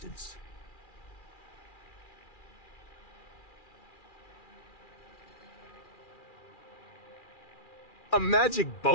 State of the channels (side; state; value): right; late; 2.4 ms